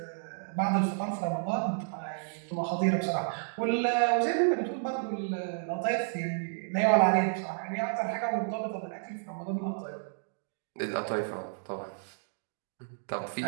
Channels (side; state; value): left; silent; digital silence